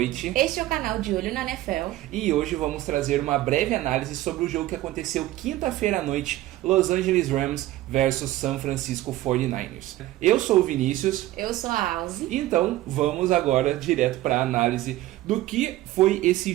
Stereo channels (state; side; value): quieter; left; 15.7 dB